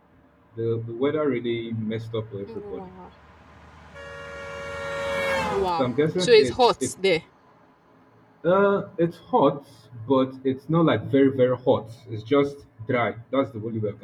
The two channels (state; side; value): identical; both; correlation 1.00